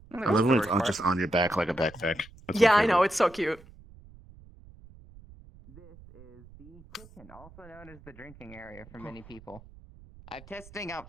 I love when it's just on your back like a backpack. That's Yeah, my I favorite. know. It's so cute. This is the kitchen, also known as the drinking area for many people. I'm testing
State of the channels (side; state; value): right; noise; rumble, 21 dB below the sound